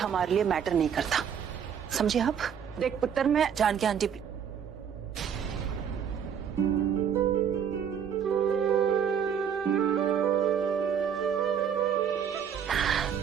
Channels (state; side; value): quieter; left; 8.0 dB